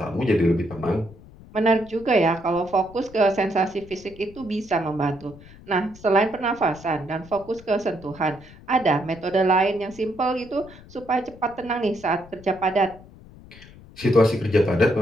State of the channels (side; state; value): left; noise; rumble, 21 dB below the sound